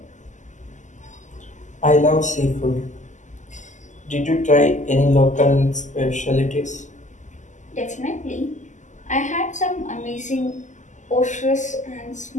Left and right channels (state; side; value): late; right; 0.35 ms